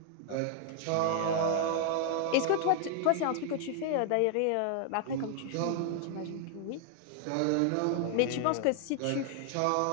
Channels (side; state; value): both; different; correlation 0.00